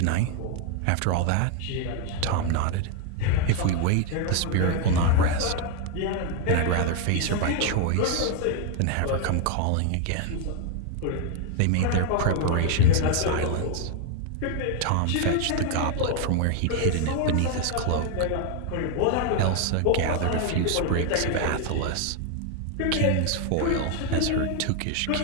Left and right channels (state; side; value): different; both; correlation 0.01